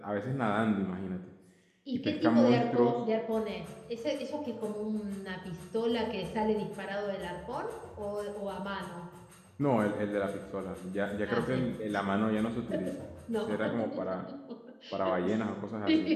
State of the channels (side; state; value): both; identical; correlation 1.00